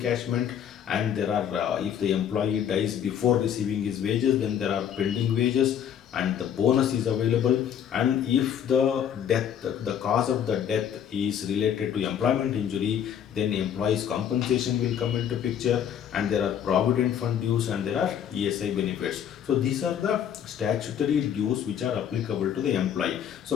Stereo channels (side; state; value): right; quieter; 9.1 dB